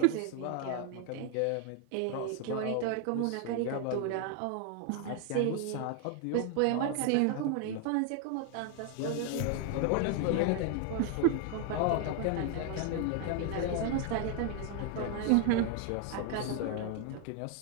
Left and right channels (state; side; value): different; both; correlation 0.00